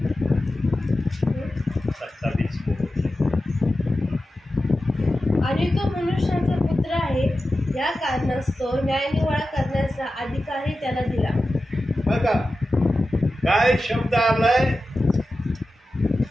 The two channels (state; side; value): normal; both; correlation 0.93